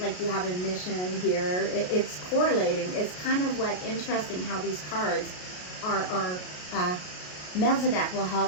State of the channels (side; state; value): right; late; 33 ms